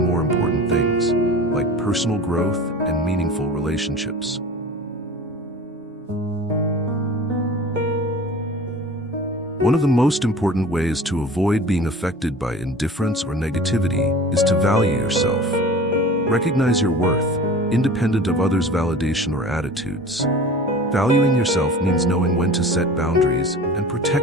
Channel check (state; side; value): normal; both; correlation 0.39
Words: more important things, like personal growth and meaningful relationships. One of the most important ways to avoid being affected by indifference or negativity is to value yourself. Recognize your worth, independent of others' validation or attitudes. Valuing yourself means knowing when to set boundaries and